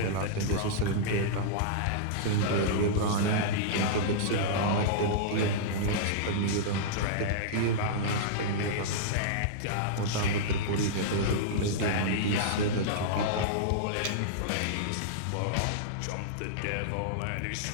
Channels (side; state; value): both; different; correlation -0.03